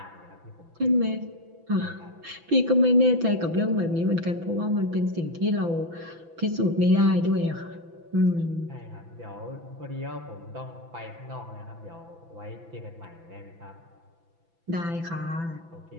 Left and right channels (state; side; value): late; left; 6.0 ms